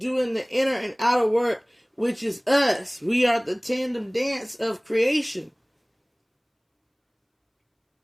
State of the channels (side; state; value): both; identical; correlation 1.00